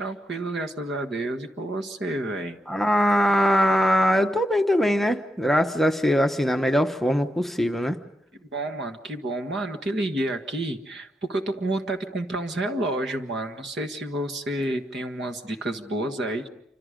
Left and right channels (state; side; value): normal; both; correlation 0.83